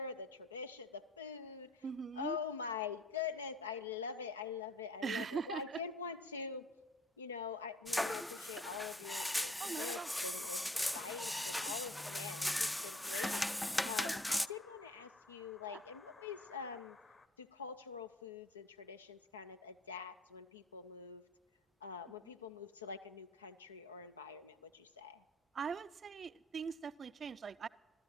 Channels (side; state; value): both; normal; correlation 0.55